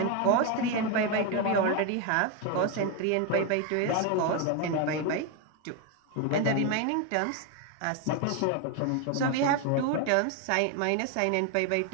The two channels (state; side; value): different; both; correlation 0.02